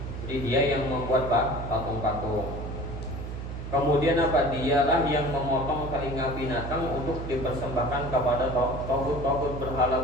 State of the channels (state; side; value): noise; right; hum, 7 dB below the sound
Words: Jadi dia yang membuat patung-patung. Kemudian dialah yang memotong telinga binatang untuk dipersembahkan kepada tauhid